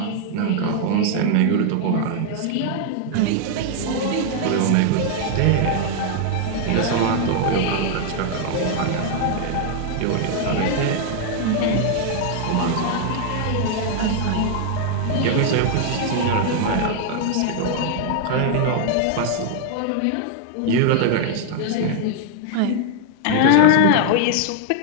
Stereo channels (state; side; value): different; both; correlation 0.00